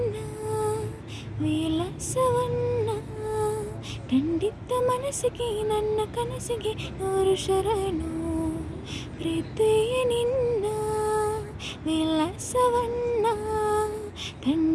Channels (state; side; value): identical; both; correlation 1.00